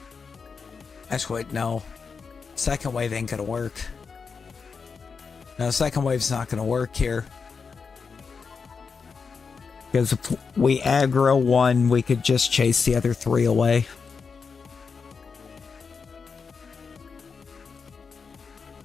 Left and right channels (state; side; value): quieter; right; 5.4 dB